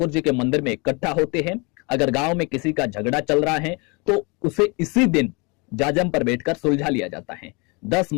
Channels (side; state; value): right; quieter; 29.5 dB